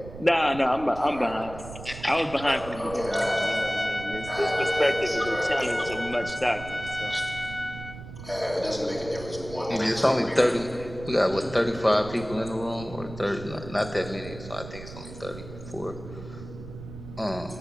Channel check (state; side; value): noise; right; rumble, 13 dB below the sound